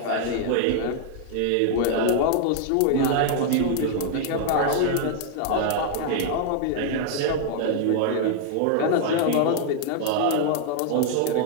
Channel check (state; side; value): different; both; correlation 0.00